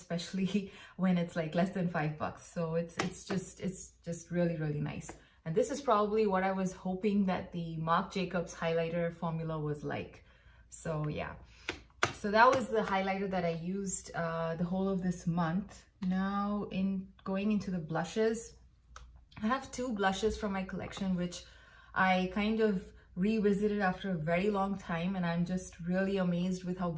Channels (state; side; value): identical; both; correlation 1.00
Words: when it's like less than $5. So it's just really, really nice. And this is probably what I was hoping that the Marc Jacobs highlighter formula was like. So yeah, so that was the highlighter that I used the whole of this month. Now, in going into the blushes, I have two blushes from my collection, which I kind of revisited after a very long time, and I'm just really amazed with how